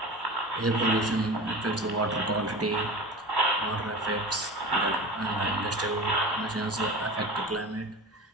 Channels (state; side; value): normal; both; correlation 0.32